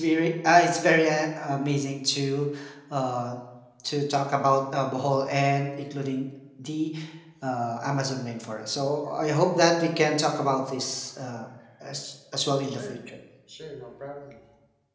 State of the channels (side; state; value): both; identical; correlation 1.00